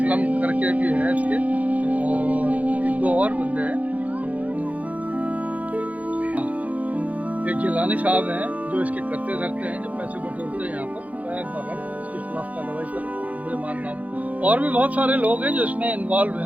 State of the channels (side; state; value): left; late; 0.071 ms